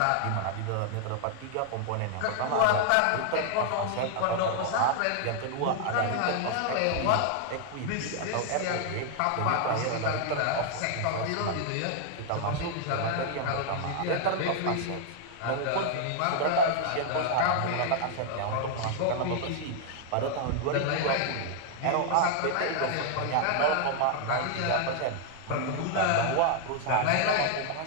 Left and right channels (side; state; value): both; different; correlation 0.00